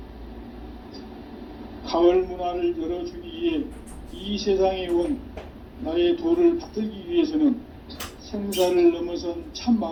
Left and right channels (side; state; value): both; identical; correlation 1.00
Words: 가을 문화를 열어주기 위해 이 세상에 온 나의 도를 받들기 위해서는 생사를 넘어선 참